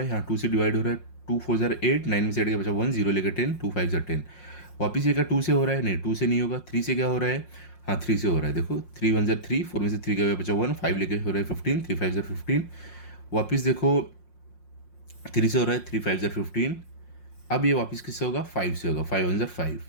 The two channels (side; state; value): right; late; 5.6 ms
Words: है, यहाँ 2 से डिवाइड हो रहा है, 2 4 ज़र 8, 9 में से 8 के बचा 1, 0 लेकर 10, 2 5 ज़र 10। वापिस ये क्या 2 से हो रहा है, नहीं 2 से नहीं होगा, 3 से क्या हो रहा है, हाँ 3 से हो रहा है। देखो 3 1 ज़र 3, 4 में से 3 का बचा 1, 5 लेके हो रहा है 15, 3 5 ज़र 15। वापिस देखो 3 से हो रहा है, 3 5 ज़र 15। अब ये वापस किससे होगा, 5 से होगा, 5 1 ज़र 5,